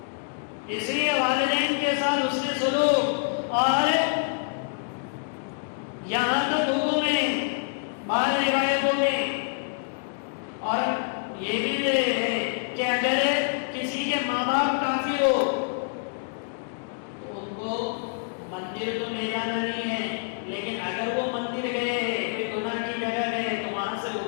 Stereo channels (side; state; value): right; silent; digital silence